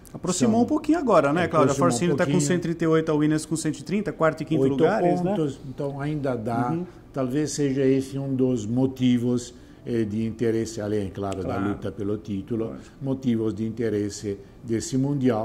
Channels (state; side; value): identical; both; correlation 1.00